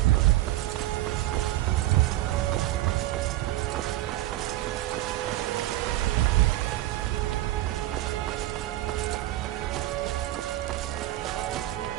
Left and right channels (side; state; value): left; quieter; 15.9 dB